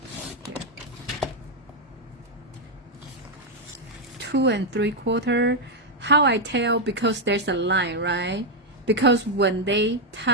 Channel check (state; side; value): normal; both; correlation 0.01